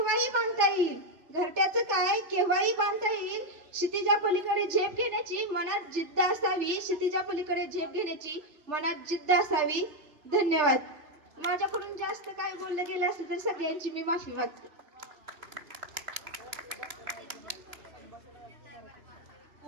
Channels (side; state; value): left; late; 2.9 ms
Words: बांधता येईल. घरट्याचं काय केव्हाही बांधता येईल. क्षितिजा पलीकडे झेप घेण्याची मनात जिद्द असावी. क्षितिजा पलीकडे झेप घेण्याची मनात जिद्द असावी. धन्यवाद. माझ्याकडून जास्त काय बोललं गेलं असेल तर सगळ्यांची मी माफी मागते.